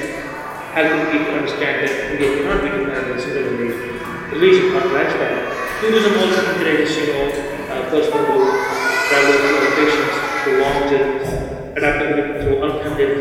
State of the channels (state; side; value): identical; both; correlation 1.00